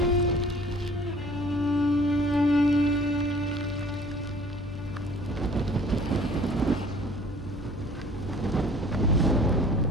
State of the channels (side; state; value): both; normal; correlation 0.51